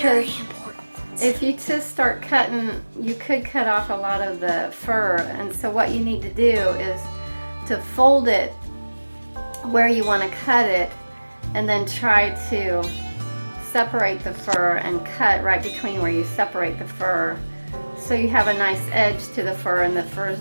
if you just start cutting, you could cut off a lot of the fur. And so what you need to do is to fold it where you want to cut it, and then try to separate the fur and cut right between where you separate the fur, so you have a nice edge to the fur and the fur is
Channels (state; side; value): inverted; both; correlation -1.00